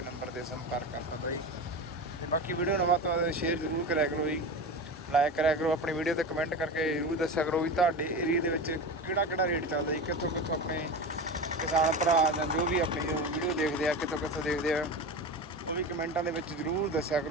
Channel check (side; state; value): both; normal; correlation 0.26